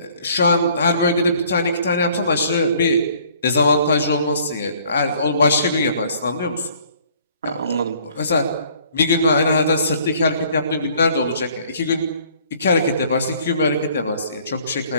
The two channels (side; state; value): both; inverted; correlation -0.59